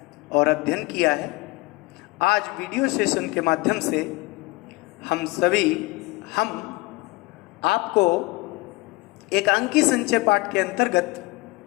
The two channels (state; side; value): quieter; right; 22.5 dB